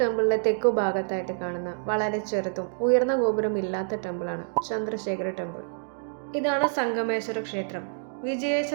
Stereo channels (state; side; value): silent; left; digital silence